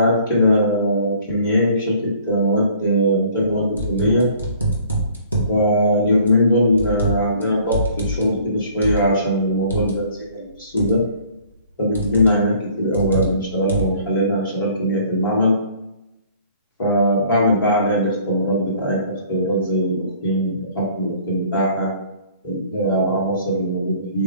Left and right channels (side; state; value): both; inverted; correlation -0.55